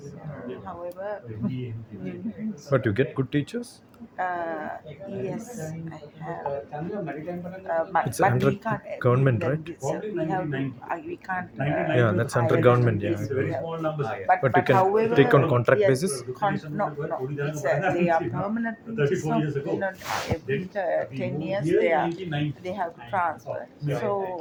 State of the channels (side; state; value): both; identical; correlation 1.00